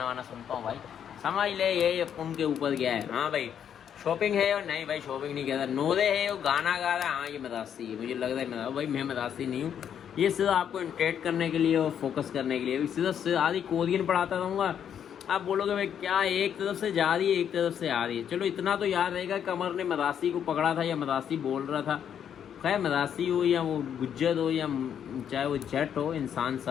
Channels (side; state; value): right; quieter; 8.8 dB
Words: वाना सुनता हूँ भाई। समझ ले ये उनके ऊपर गया है। हाँ भाई शॉपिंग है और नहीं भाई शॉपिंग नहीं कहता, नोरे है वो गाना गा रहा है, हाँ ये मदासी है, मुझे लग रहा है भाई मैं मदासी नहीं हूँ, ये सिर्फ आपको इंटरेक्ट करने के लिए और फोकस करने के लिए, सिर्फ आधी कोरियन पढ़ाता रहूँगा। आप बोलोगे भाई क्या एक तरफ से जा रही है एक तरफ से आ रही है, चलो इतना तो याद रहेगा कमर ने मदासी को पकड़ा था या मदासी बोल रहा था। खैर मदासी हो या वो गुज्जर हो या चाहे वो जट हो, इंसान